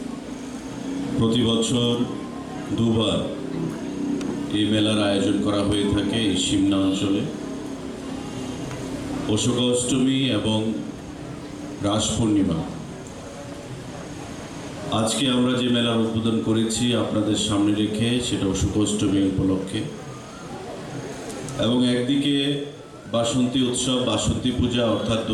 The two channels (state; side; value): identical; both; correlation 1.00